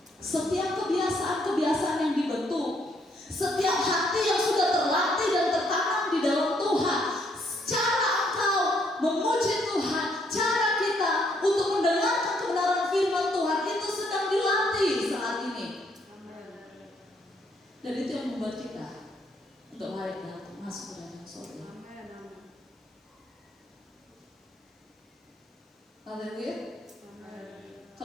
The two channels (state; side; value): normal; both; correlation 0.70